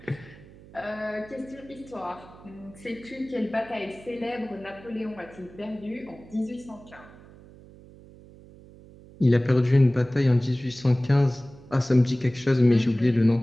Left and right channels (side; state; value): right; noise; hum, 21 dB below the sound